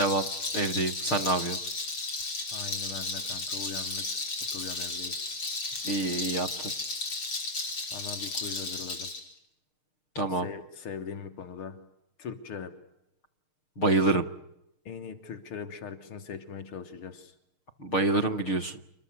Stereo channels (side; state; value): right; late; 6.6 ms